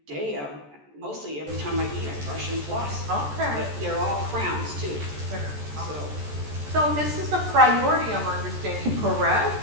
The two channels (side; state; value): left; late; 14 ms